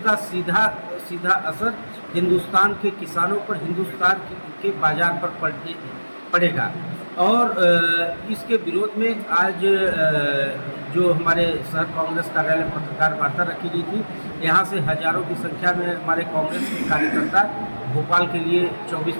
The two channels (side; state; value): both; inverted; correlation -1.00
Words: सीधा असर हिंदुस्तान के किसानों पर, हिंदुस्तान के बाजार पर पड़ेगा। और इसके विरोध में आज जो हमारे शहर कांग्रेस कार्यालय में पत्रकार वार्ता रखी गई थी, यहाँ से हजारों की संख्या में हमारे कांग्रेस के कार्यकर्ता भोपाल के लिए 24